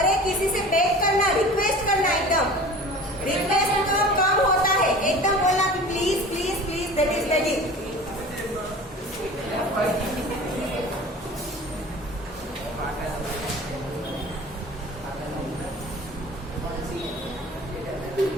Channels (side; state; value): both; normal; correlation 0.40